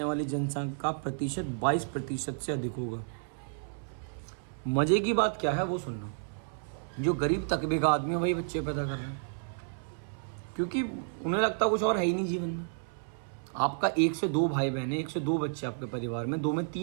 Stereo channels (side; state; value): left; silent; 57 dB below the other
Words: वाली जनसंख्या का प्रतिशत 22% से अधिक होगा। मजे की बात क्या है वो सुनना। जो गरीब तबके का आदमी है वही बच्चे पैदा कर रहे हैं, क्योंकि उन्हें लगता कुछ और है ही नहीं जीवन में। आपका 1 से 2 भाई बहन है, 1 से 2 बच्चे आपके परिवार में, 2 में